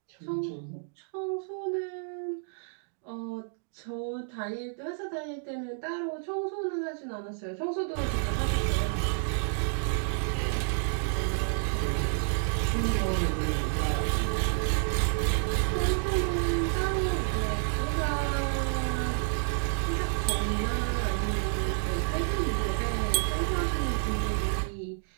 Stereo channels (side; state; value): left; silent; digital silence